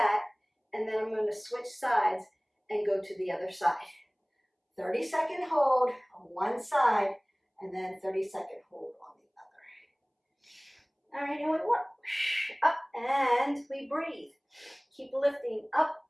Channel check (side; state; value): both; identical; correlation 1.00